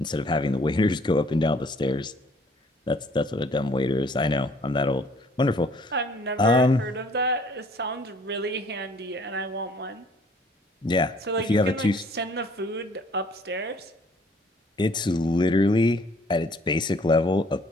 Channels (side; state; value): both; normal; correlation 0.58